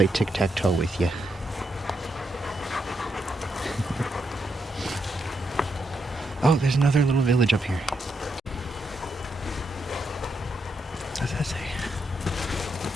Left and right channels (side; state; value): both; normal; correlation 0.81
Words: tic-tac-toe with you. Oh, there's another little village up here. What does that say?